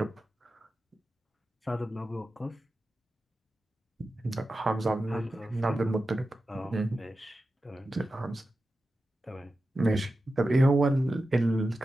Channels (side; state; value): both; normal; correlation 0.92